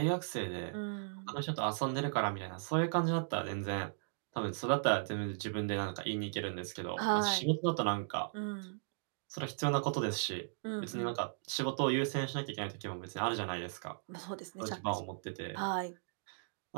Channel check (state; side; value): silent; left; digital silence